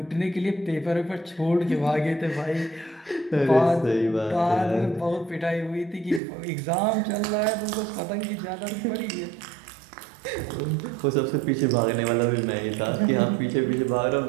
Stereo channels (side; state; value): left; drops out; at 6.2 s